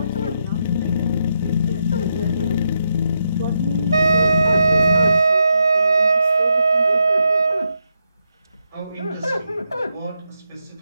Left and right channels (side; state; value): both; inverted; correlation -0.81